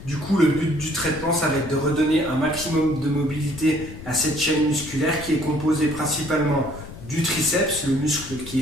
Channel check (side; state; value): left; noise; rumble, 14 dB below the sound